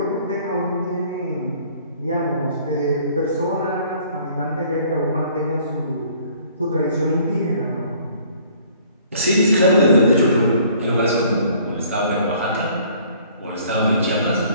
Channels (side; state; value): both; inverted; correlation -0.56